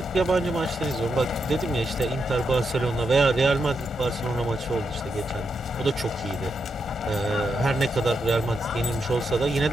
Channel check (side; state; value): both; normal; correlation 0.83